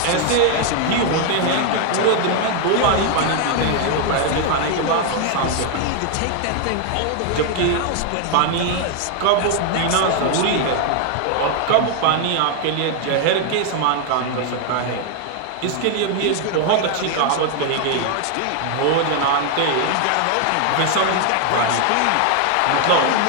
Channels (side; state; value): both; different; correlation 0.01